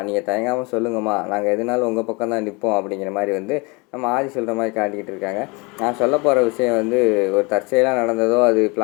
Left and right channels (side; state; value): right; quieter; 28.3 dB